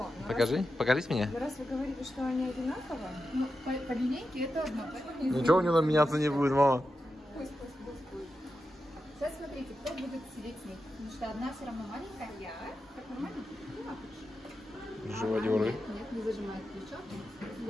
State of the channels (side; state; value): both; normal; correlation 0.89